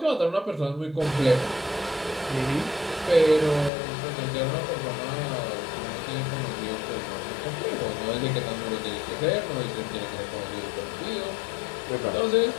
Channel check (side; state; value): right; drops out; at 3.7 s